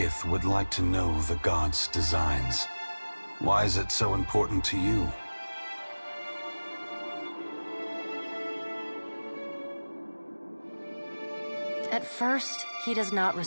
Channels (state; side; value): inverted; both; correlation -1.00